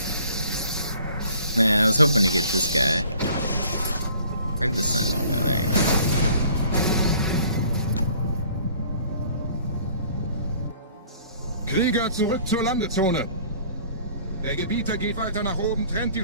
Man, I was hoping to get this guy. Where'd the Sentinel go? There you go. Krieger, zurück zur Landezone. Der Gebieter geht weiter nach oben, trennt die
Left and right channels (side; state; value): both; inverted; correlation -0.53